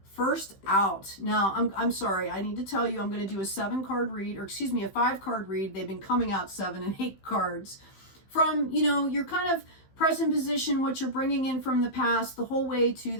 First out. Now, I'm sorry, I need to tell you I'm going to do a 7-card read, or excuse me, a 5-card read. They've been coming out 7 and 8 cards. From, your kind of present position, what you're bringing in from the past, the whole way to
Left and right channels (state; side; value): late; right; 15 ms